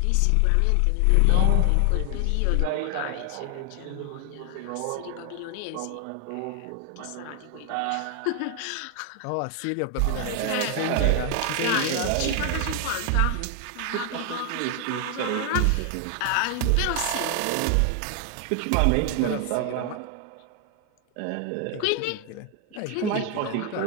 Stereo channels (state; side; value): different; both; correlation 0.00